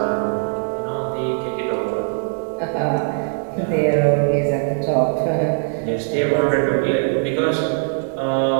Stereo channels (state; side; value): silent; left; 65 dB below the other